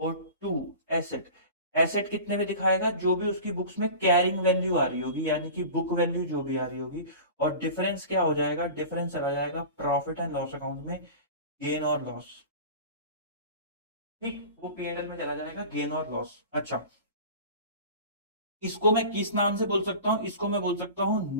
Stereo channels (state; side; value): inverted; both; correlation -0.36